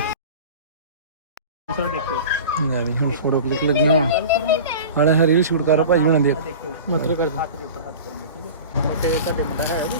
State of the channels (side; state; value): both; inverted; correlation -0.36